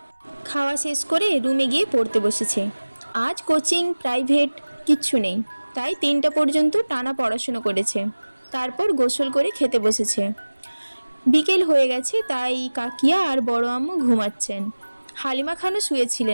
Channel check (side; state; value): both; inverted; correlation -1.00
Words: খাওয়া শেষ করে রুমে গিয়ে পড়তে বসেছে। আজ কোচিং প্রাইভেট কিচ্ছু নেই, তাই 3টা পর্যন্ত টানা পড়াশুনো করেছে। তারপর গোসল করে খেতে বসেছে। বিকেল হয়ে গেছে, তাই কাকিয়া আর বড় আম্মু ঘুমাচ্ছেন। হালিমা খানও